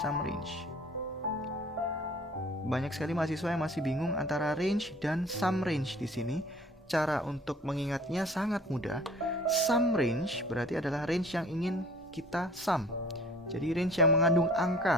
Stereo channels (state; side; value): normal; both; correlation 0.50